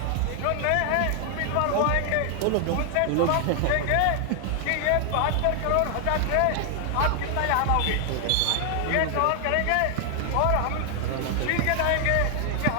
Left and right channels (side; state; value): both; different; correlation 0.00